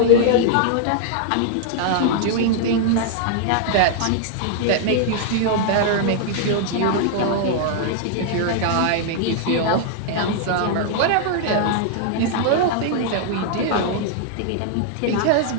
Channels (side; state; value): both; different; correlation 0.00